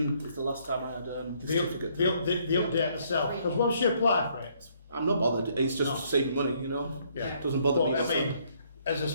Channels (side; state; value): both; inverted; correlation -0.67